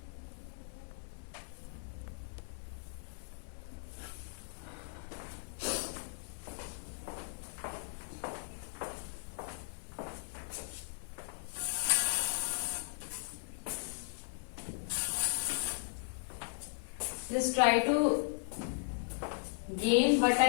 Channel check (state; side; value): silent; right; 53 dB below the other